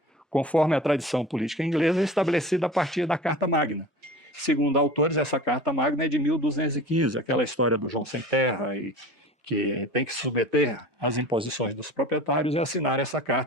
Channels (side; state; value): both; normal; correlation 0.37